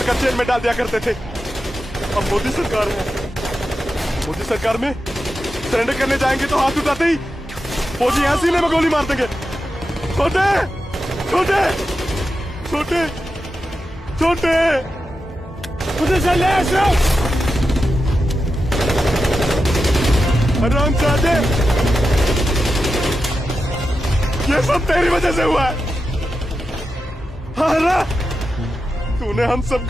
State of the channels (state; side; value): normal; both; correlation 0.90